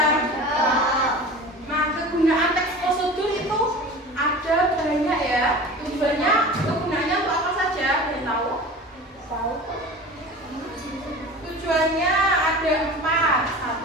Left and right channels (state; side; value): normal; both; correlation 0.36